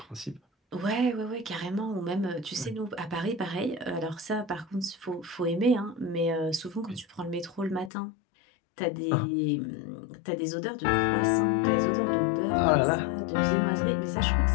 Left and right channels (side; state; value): right; drops out; at 7.9 s